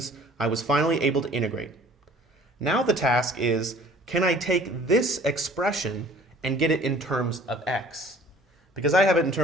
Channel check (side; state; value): both; normal; correlation 0.50